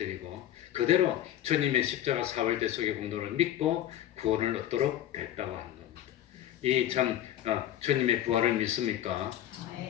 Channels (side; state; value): right; quieter; 11.9 dB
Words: 그대로 주님의 십자가 사흘대속의 공로를 믿고 구원을 얻도록 됐다고 하는 겁니다. 이 참 주님의 부활을 믿습니까?